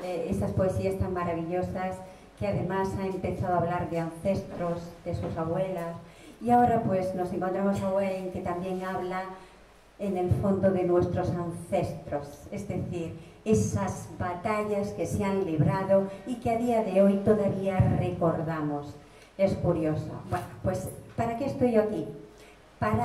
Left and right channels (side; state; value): both; identical; correlation 1.00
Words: esas poesías tan maravillosas, que además ha empezado a hablar de ancestros, de sus abuelas, y ahora pues nos encontramos a Wayne, que también habla en el fondo de nuestros ancestros, es decir, esas batallas que se han librado y que a día de hoy todavía recordamos. Es curioso. Bueno, pues ¿para qué estoy yo aquí?